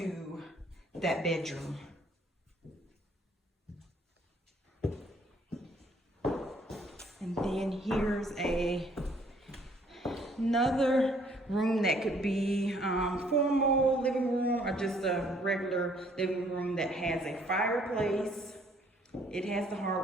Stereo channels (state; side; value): normal; both; correlation 0.62